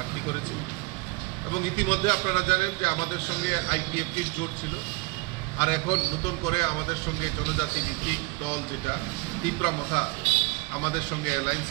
করেছি। এবং ইতিমধ্যে আপনারা জানেন যে আমাদের সঙ্গে আইপিএফটির জোট ছিল, আর এখন নতুন করে আমাদের সঙ্গে জনজাতি ভিত্তিক দল যেটা তীব্রামথা আমাদের সঙ্গে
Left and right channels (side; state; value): left; quieter; 25.3 dB